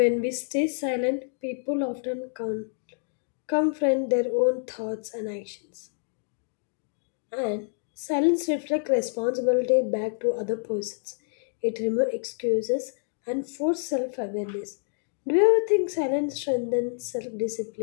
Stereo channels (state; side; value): silent; right; digital silence